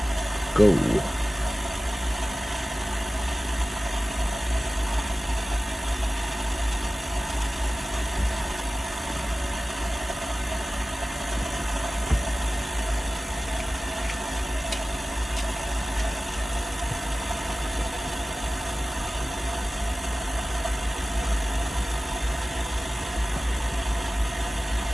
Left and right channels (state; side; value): normal; both; correlation 0.96